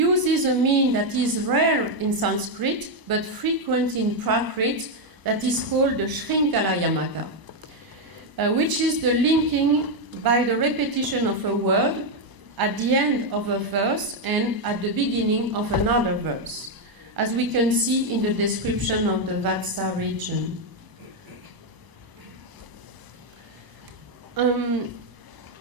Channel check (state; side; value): late; left; 1.0 ms